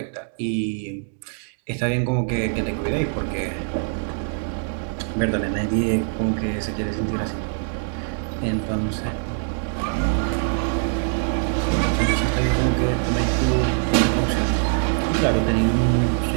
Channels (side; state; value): left; silent; 63 dB below the other